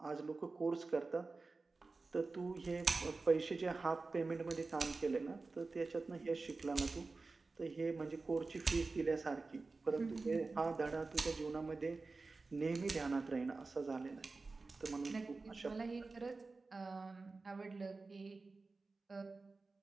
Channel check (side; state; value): left; quieter; 3.8 dB